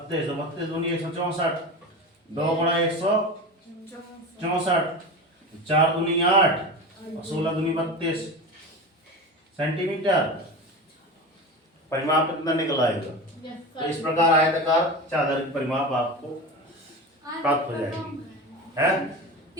32 दूनी 164, 2 गुणा 164, 4 दूनी 8 और 16 दूनी 32 सेंटीमीटर। परिमाप कितना निकल आएगा। तो इस प्रकार आयताकार चादर की परिमाप आपको प्राप्त हो जाएगी। है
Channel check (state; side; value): normal; both; correlation 0.27